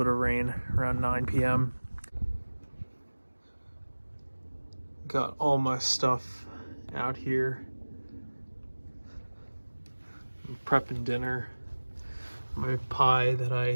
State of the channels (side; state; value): both; inverted; correlation -1.00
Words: of rain around 9 p.m. Got all my stuff out here. I'm prepping dinner. My pie that